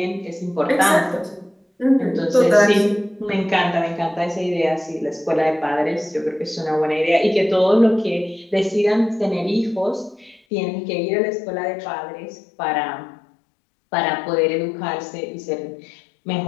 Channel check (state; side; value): drops out; right; at 10.4 s